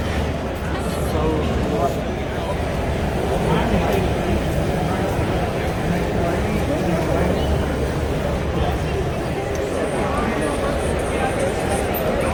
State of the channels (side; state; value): both; identical; correlation 1.00